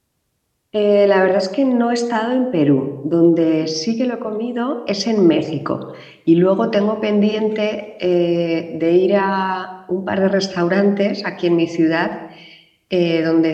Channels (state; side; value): identical; both; correlation 1.00